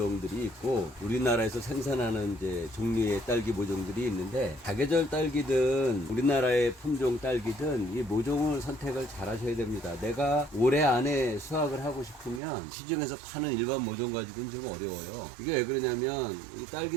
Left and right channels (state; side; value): drops out; left; at 12.4 s